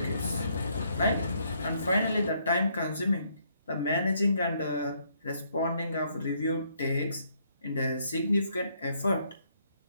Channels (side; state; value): both; inverted; correlation -0.71